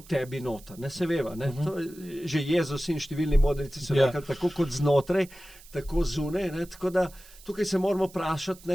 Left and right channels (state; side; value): noise; right; hiss, 22 dB below the sound